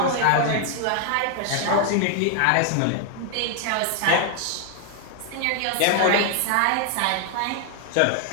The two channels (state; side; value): different; both; correlation 0.00